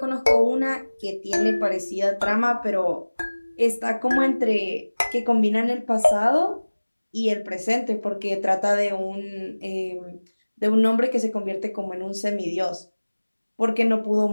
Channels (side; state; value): both; inverted; correlation -1.00